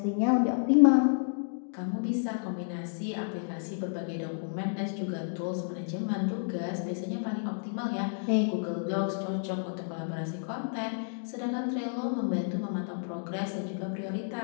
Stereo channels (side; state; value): right; silent; digital silence